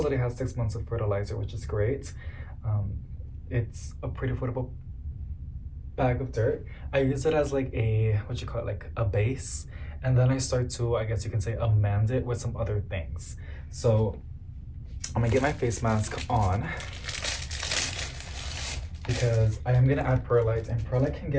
has 6 months of fertilizer, which is great. It's a pretty affordable bag of dirt. I use it as like a, like a base. And then I start to, I guess you can say, amend it with some other things. So I'm gonna get my face mask on because I am gonna add perlite, and perlite can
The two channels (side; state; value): both; identical; correlation 1.00